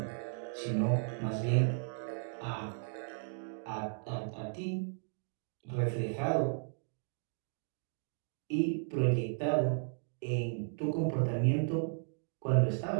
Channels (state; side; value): silent; left; digital silence